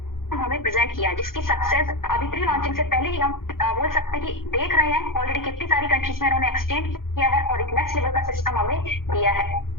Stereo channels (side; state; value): right; late; 0.92 ms